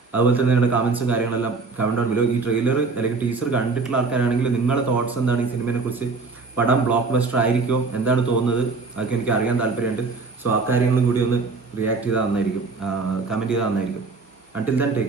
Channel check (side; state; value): left; quieter; 4.2 dB